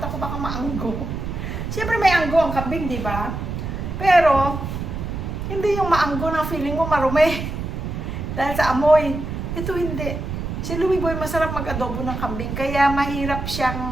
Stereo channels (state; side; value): noise; right; rumble, 5 dB below the sound